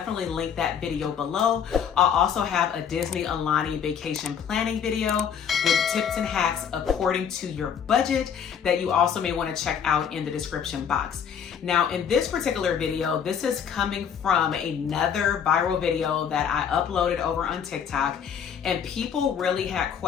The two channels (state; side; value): quieter; right; 7.8 dB